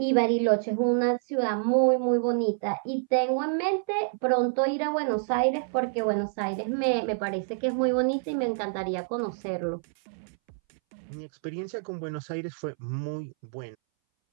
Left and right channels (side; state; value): left; silent; 60 dB below the other